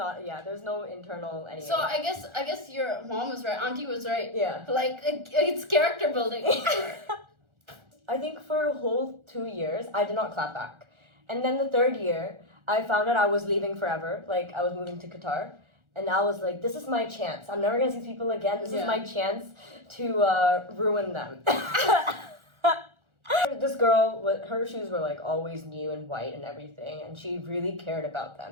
internal anything. So I guess your mom was right. Auntie was right. Yeah. Like it's character building. I think for a whole 2 years I did not clap back, and then the third year I found out I was leaving forever. Like I was moving to Qatar, and I was like, this is my chance. I'm never gonna see people again. This is my chance to ruin them. This girl, her shoes were like always new and white and everything, and she really cared about them.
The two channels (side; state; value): left; late; 1.4 ms